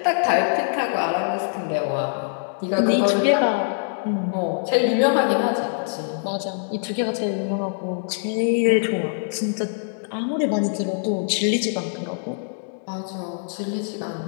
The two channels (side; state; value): right; silent; digital silence